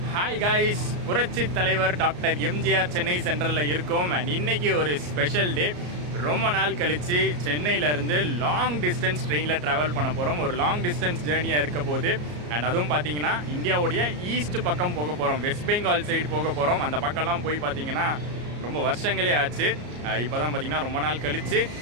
ஹாய் காய்ஸ், புரட்சி தலைவர் டாக்டர் எம்ஜிஆர் சென்னை சென்ட்ரலில் இருக்கோம். அண்ட் இன்னைக்கு ஒரு ஸ்பெஷல் டே. ரொம்ப நாள் கழித்து சென்னையிலேருந்து லாங் டிஸ்டன்ஸ் ட்ரெயினில் ட்ராவல் பண்ண போகிறோம். ஒரு லாங் டிஸ்டன்ஸ் ஜேர்னியாக இருக்க போது. அண்ட் அதுவும் பார்த்தீங்கன்னா இந்தியாவுடைய ஈஸ்ட் பக்கம் போக போகிறோம். வெஸ்ட் பெங்கால் சைடு போக போகிறோம். அந்த பக்கம்லாம் போய் பார்த்தீங்கன்னா ரொம்ப வருஷங்களே ஆச்சு. இப்போ தான் பார்த்தீங்கன்னா ரொம்ப நாள் கழித்து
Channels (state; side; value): late; left; 34 ms